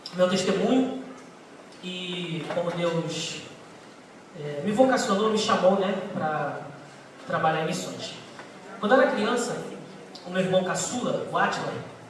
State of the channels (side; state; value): both; identical; correlation 1.00